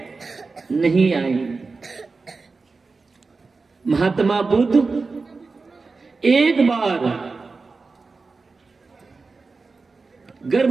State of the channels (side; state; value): left; quieter; 4.1 dB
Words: नहीं आई। महात्मा बुद्ध एक बार